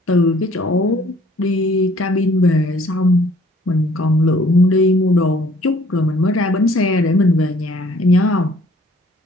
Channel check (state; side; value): normal; both; correlation 0.57